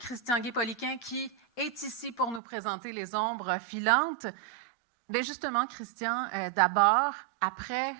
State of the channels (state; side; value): drops out; left; at 2.4 s